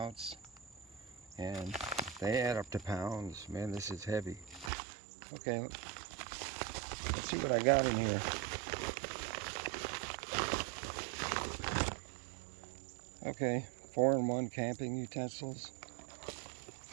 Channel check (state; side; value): drops out; left; at 4.7 s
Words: and they add up to pounds. Man, this is heavy. Okay, let's see what I got in here. Okay, 4-in-1 camping utensils.